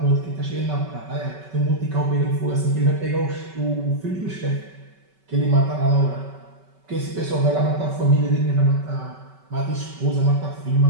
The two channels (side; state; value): left; late; 5.3 ms